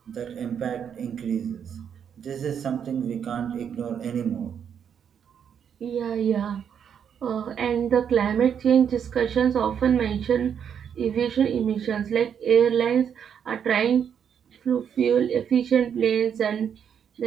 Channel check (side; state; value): left; quieter; 8.0 dB